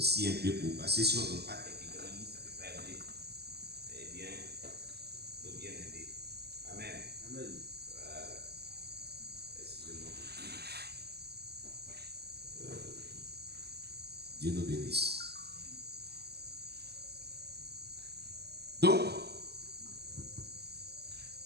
un peu pour passer si on ne donne pas quelques grandes lignes, ça ne peut pas aider. Eh bien, il faut bien aider. Amen. Amen. Voilà. Excusez-moi. Dieu nous bénisse. Donc,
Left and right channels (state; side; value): late; left; 0.47 ms